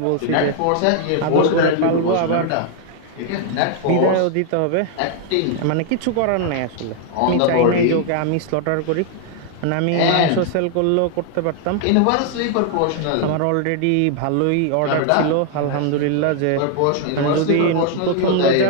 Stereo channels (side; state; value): both; different; correlation 0.00